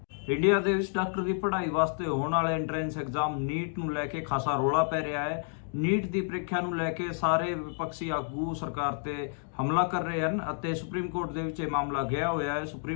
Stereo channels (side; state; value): right; silent; 58 dB below the other